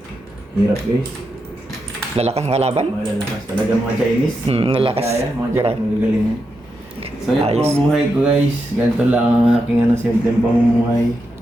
Hirap guys. lalakas ang kalaban. Mga lalakas talaga mga Chinese. Lalakas. Kaya, mga Grabe. Chinese magagaling. So yan po Ayos. ang buhay ko guys. Ganito lang ang aking ano, simpleng pamumuhay.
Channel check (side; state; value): both; normal; correlation 0.85